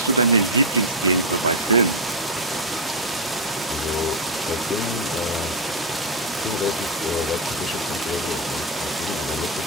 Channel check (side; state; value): both; normal; correlation 0.01